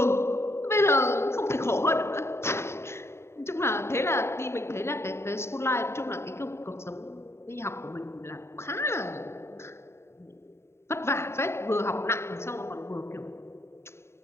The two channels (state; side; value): late; right; 0.13 ms